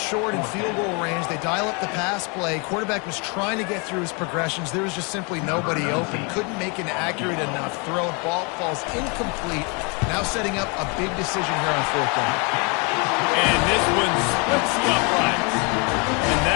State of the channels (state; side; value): quieter; right; 32.4 dB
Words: short in field goal range, they dial up the pass play. Quarterback was trying to get through his progressions. There was just simply nobody open. Couldn't make an accurate enough throw. Ball falls incomplete. Now setting up a big decision here on 4th down. And this one splits the uprights. And